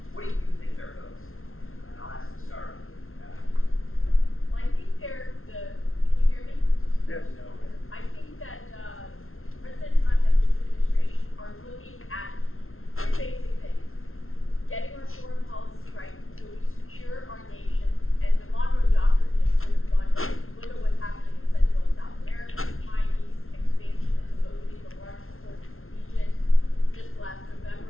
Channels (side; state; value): right; late; 0.61 ms